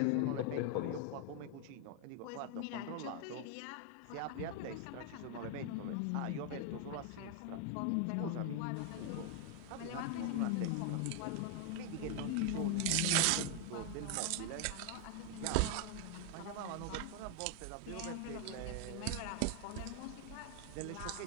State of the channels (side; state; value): both; different; correlation 0.00